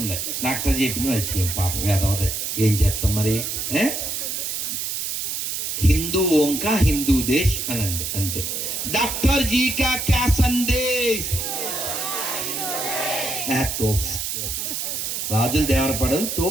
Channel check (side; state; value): right; noise; hiss, 3 dB below the sound